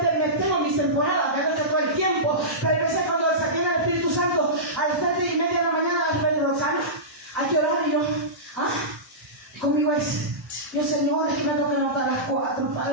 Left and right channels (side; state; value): both; normal; correlation -0.17